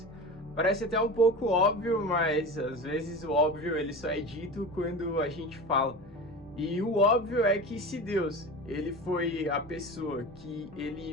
Parece até um pouco óbvio, mas às vezes o óbvio ele só é dito quando a gente fala. E o óbvio é que se Deus, ele foi a pessoa que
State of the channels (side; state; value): both; normal; correlation 0.30